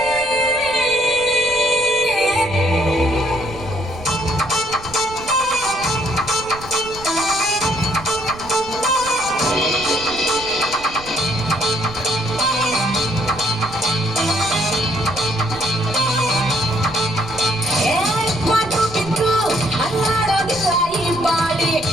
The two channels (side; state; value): right; noise; rumble, 16 dB below the sound